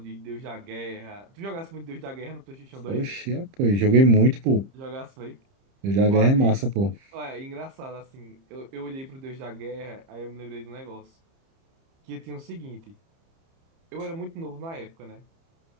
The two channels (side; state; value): left; late; 30 ms